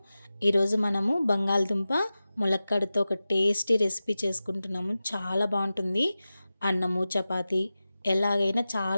ఈరోజు మనము బంగాళదుంప ములక్కాడతో ఒక టేస్టీ రెసిపీ చేసుకుంటున్నాము. చాలా బాగుంటుంది. అన్నము చపాతి ఎలాగైనా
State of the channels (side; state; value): both; inverted; correlation -0.95